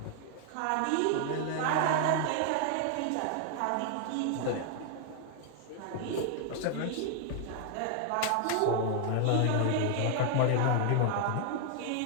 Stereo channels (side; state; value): both; different; correlation 0.00